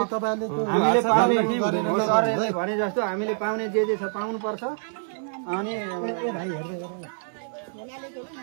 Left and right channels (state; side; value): silent; left; digital silence